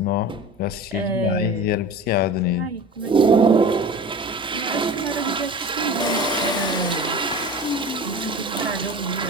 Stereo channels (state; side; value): normal; both; correlation 0.35